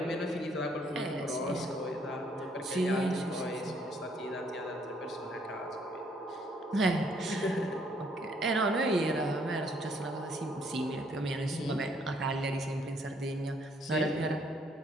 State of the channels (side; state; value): both; normal; correlation 0.67